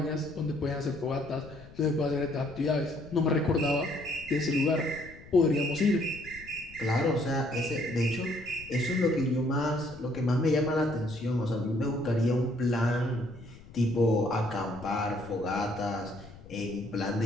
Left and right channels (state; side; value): noise; left; rumble, 19 dB below the sound